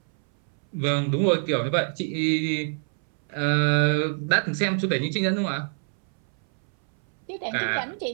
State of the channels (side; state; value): left; silent; 62 dB below the other